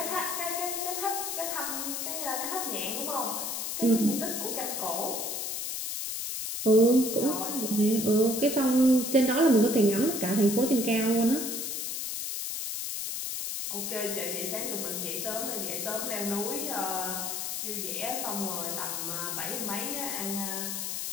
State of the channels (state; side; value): noise; left; hiss, 3 dB below the sound